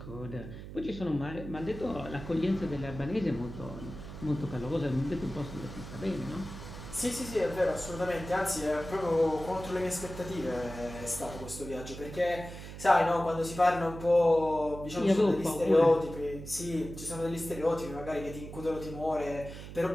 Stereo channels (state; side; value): noise; right; hum, 11 dB below the sound